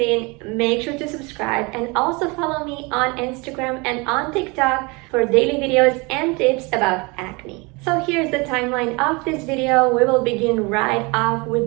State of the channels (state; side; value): quieter; left; 27.5 dB